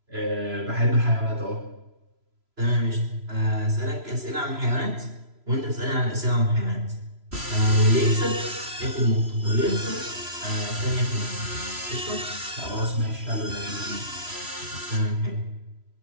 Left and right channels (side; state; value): left; late; 3.0 ms